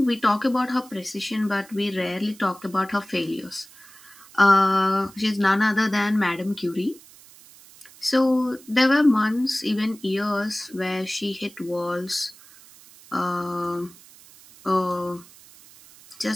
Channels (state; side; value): noise; right; hiss, 23 dB below the sound